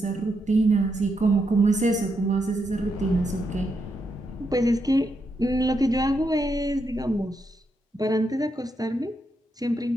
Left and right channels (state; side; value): normal; both; correlation 0.81